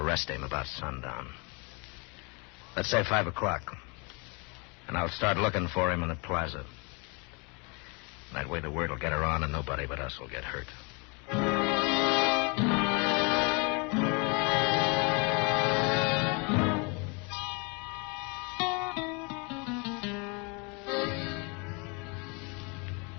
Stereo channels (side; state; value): right; quieter; 31.8 dB